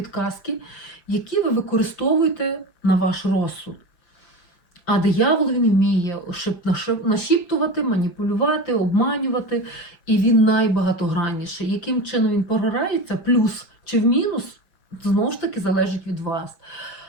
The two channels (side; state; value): right; late; 5.9 ms